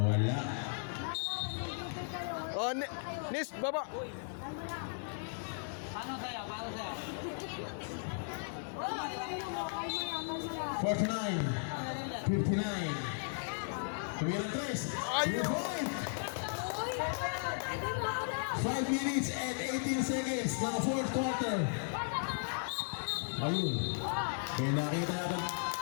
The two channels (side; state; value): right; silent; digital silence